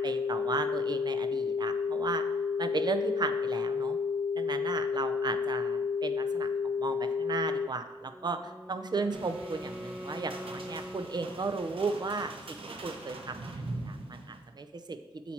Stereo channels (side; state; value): both; normal; correlation 0.60